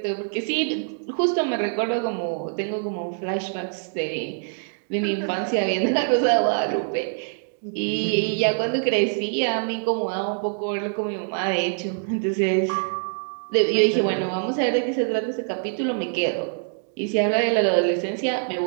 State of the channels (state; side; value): silent; left; digital silence